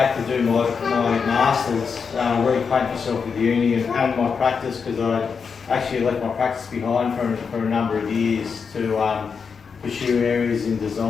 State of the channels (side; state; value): right; quieter; 5.8 dB